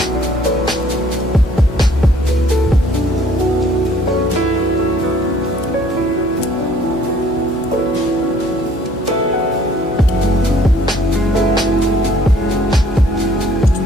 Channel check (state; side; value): normal; both; correlation 0.58